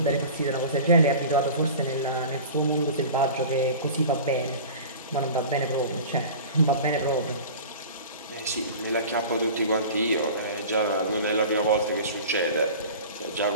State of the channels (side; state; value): both; inverted; correlation -0.37